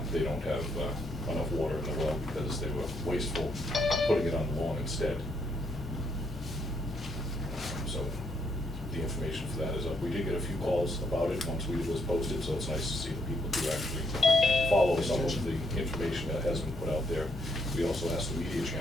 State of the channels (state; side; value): normal; both; correlation 0.73